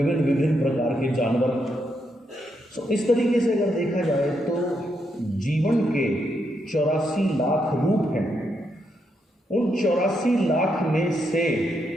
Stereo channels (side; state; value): both; normal; correlation 0.80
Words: प्रकार के जानवर। तो इस तरीके से अगर देखा जाए तो जीवन के 84 लाख रूप हैं। उन 84 लाख में से